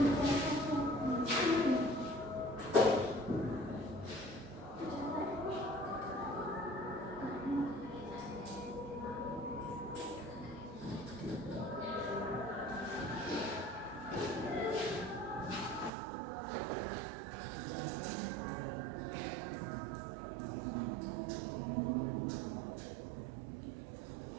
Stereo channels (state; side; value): drops out; left; at 15.9 s